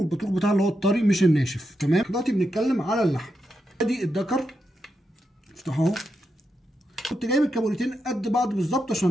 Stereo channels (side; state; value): both; normal; correlation 0.85